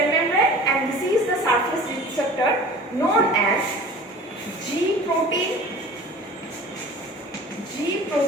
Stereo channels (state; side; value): normal; both; correlation 0.42